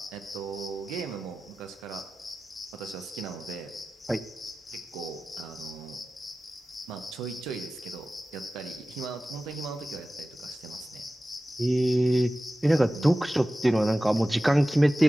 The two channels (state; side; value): normal; both; correlation 0.95